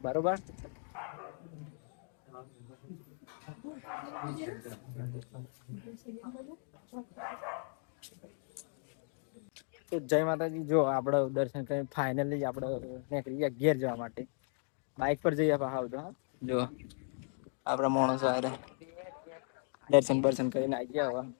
બરોબર. તો જય માતાજી. જો આપણે દર્શન કરીને ફાઇનલી આપણે નીકળી ગયા ઘેર જવા માટે. બાઇક પર જઈએ પાછા તો જો આપણા માણસો આરે દર્શન બર્શન કરીને આવી ગયા. હવે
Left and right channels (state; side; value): silent; right; 54 dB below the other